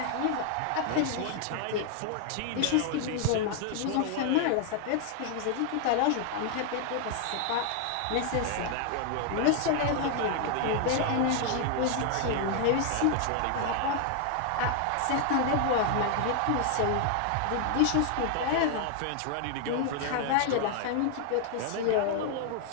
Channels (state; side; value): different; both; correlation 0.00